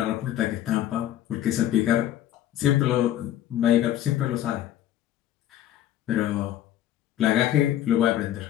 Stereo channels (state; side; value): quieter; right; 12.2 dB